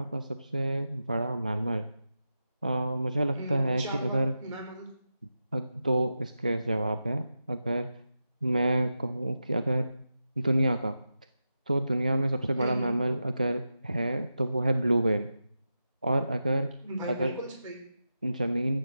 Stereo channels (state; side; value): inverted; both; correlation -0.90